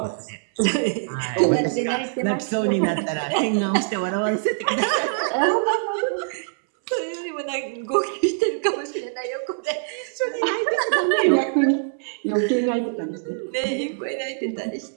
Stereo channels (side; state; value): left; silent; 63 dB below the other